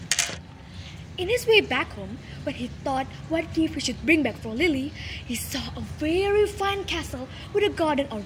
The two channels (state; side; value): identical; both; correlation 1.00